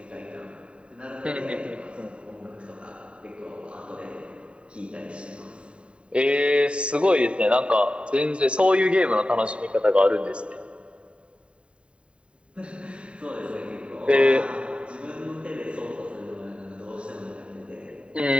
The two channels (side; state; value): left; late; 0.057 ms